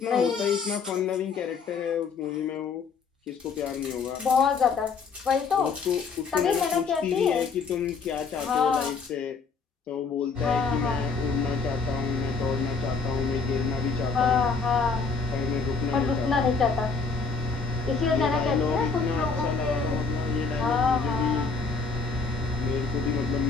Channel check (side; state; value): right; quieter; 4.9 dB